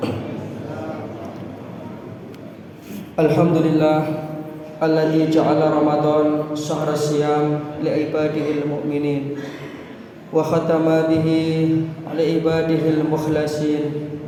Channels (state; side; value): identical; both; correlation 1.00